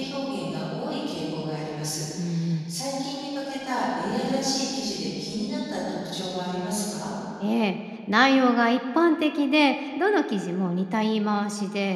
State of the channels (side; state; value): both; identical; correlation 1.00